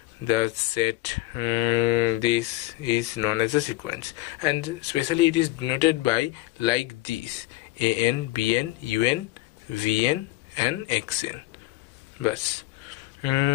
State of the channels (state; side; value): quieter; right; 18.3 dB